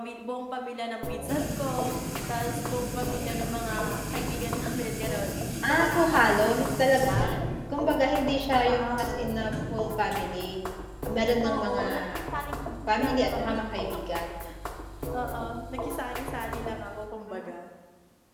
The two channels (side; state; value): both; identical; correlation 1.00